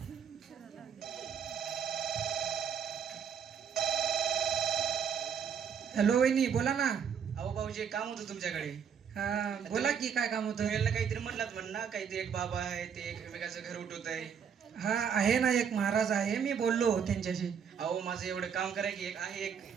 हॅलो वहिनी, बोला ना. अहो भाऊजी एक काम होतं तुमच्याकडे. हा, बोला की काय काम होतं. तुम्ही याला काहीतरी म्हणलात म्हण ना, काहीतरी एक बाबा आहे ते एकमेकाचं घर उठवत आहे. हा, आहे ना, एक महाराज आहे, मी बोललो त्यांच्याशी. अहो माझं एवढं काम करा की एक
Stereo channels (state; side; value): quieter; left; 7.3 dB